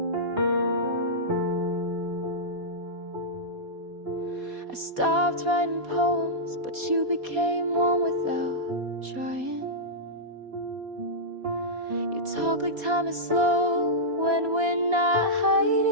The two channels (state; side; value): late; left; 4.2 ms